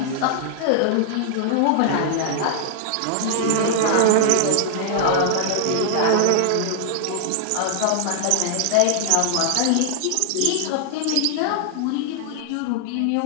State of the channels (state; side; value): different; both; correlation 0.00